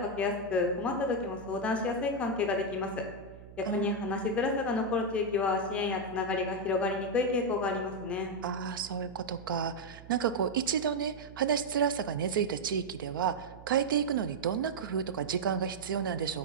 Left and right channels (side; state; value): right; noise; hum, 18 dB below the sound